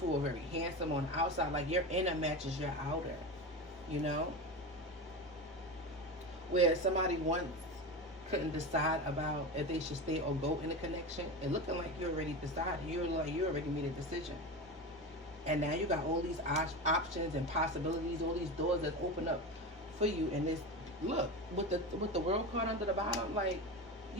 or very handsome on the outside. Like, your inner matches your outer, you know? Where somebody once couldn't decide about if they should stay or go in a connection, and looking like you already decided. You already made a decision. And now you got all these options and possibilities, all these doors that open up for you. And this, look, with the world card under the bottom, like,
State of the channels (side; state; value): both; normal; correlation 0.24